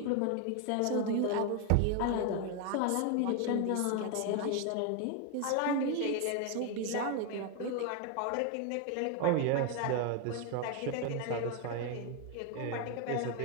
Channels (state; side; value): different; both; correlation 0.01